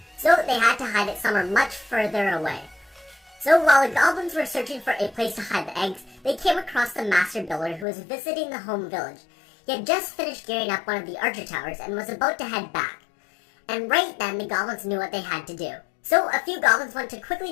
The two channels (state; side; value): drops out; right; at 7.9 s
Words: So they had to hide it somewhere much further away. So while the goblins were searching for a place to hide the eggs, they came across the master builder who was visiting the home village. He had just finished gearing up one of the archer towers and was about to head back. And right then, the goblins knew what they had to do. So a few goblins went to